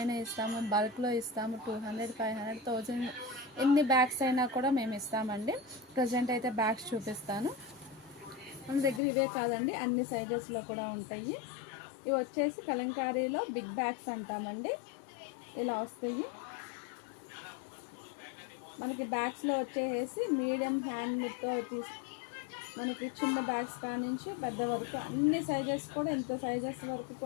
ఇస్తాము, బల్క్లో ఇస్తాము. 200, 500, 1000 ఎన్ని బ్యాగ్స్ అయినా కూడా మేము ఇస్తామండి. ప్రజెంట్ అయితే బ్యాగ్స్ చూపిస్తాను. మన దగ్గర ఇవే కాదండి, అన్ని సైజెస్లో కూడా ఉంటాయి. ఇవి వచ్చేసి కలంకారీలో బిగ్ బ్యాగ్స్ అంటామండి. ఇలా వస్తాయి. మనకి బ్యాగ్స్లో వచ్చేసి మీడియం హ్యాండ్తో మనకి చిన్న బ్యాగ్స్ కానించి పెద్ద వరకు అన్ని సైజెస్ కూడా, ఇంత సైజెస్ వరకు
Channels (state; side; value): drops out; right; at 9.0 s